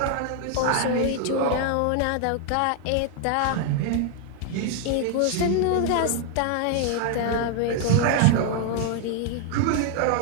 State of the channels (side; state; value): both; different; correlation 0.00